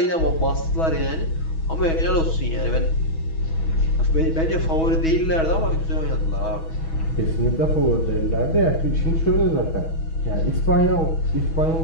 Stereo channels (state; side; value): late; right; 6.2 ms